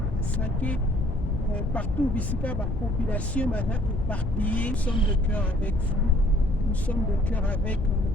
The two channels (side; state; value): left; noise; rumble, 3 dB below the sound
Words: à Sake, partout ici, la population est éparpillée. Nous sommes de cœur avec vous, nous sommes de cœur avec